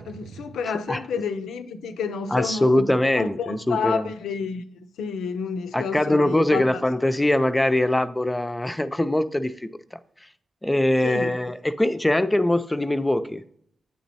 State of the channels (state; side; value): normal; both; correlation 0.95